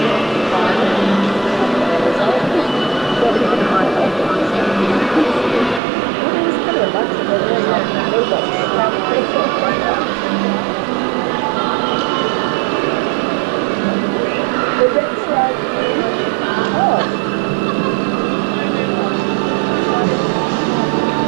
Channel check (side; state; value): left; drops out; at 5.8 s